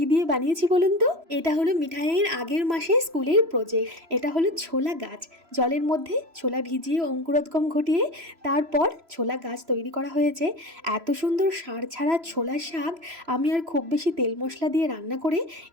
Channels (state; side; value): late; left; 3.0 ms